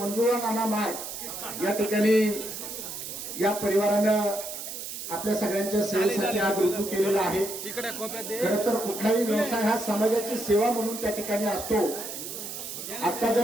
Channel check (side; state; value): right; noise; hiss, 8 dB below the sound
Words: नाना मार्ट या ठिकाणी या परिवारानं आपल्या सगळ्यांच्या सेवेसाठी आज रुजू केलेला आहे. खरं तर कुठलाही व्यवसाय हा समाजाची सेवा म्हणून त्या ठिकाणी असतो. आता